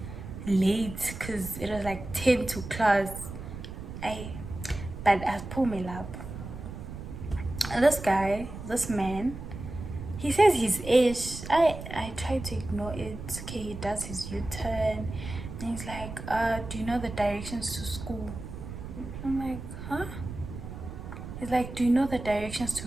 late because it was like 10 to class. But I pulled me up. And this man, he says his age. I tried to ignore it. Okay, he does his U-turn, and he's like, do you know the directions to school? I'm like, huh? He's like, do you know the directions to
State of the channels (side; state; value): right; noise; rumble, 10 dB below the sound